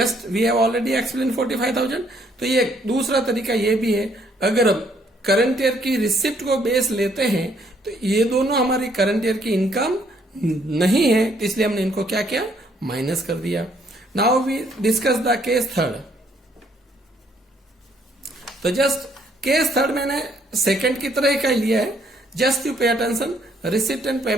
we have already explain 45,000. तो ये दूसरा तरीका ये भी है, अगर हम करंट ईयर की रिसिप्ट को बेस लेते हैं तो ये दोनों हमारी करंट ईयर की इनकम नहीं है, तो इसलिए हमने इनको क्या किया, माइनस कर दिया. Now we discuss the case third. तो जस्ट केस थर्ड मैंने सेकंड की तरह का लिया है. Just you pay attention. Receipt and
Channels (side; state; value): both; normal; correlation 0.67